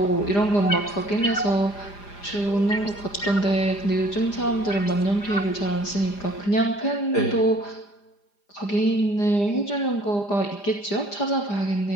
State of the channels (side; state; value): right; late; 4.9 ms